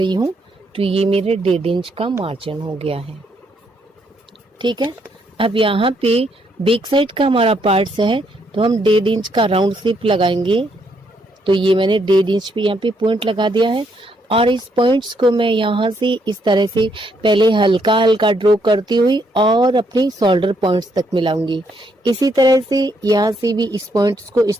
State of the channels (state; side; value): normal; both; correlation 0.74